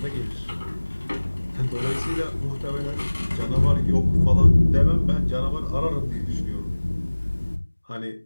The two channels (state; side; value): inverted; both; correlation -1.00